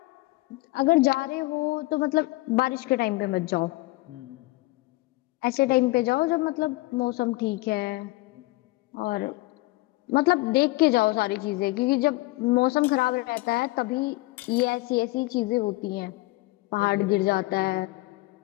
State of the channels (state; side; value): quieter; right; 21.3 dB